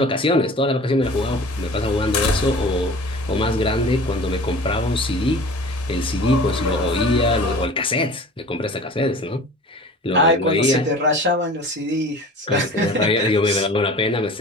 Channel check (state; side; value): normal; both; correlation 0.41